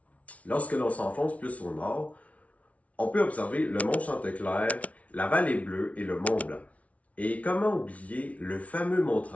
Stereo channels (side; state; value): right; late; 0.066 ms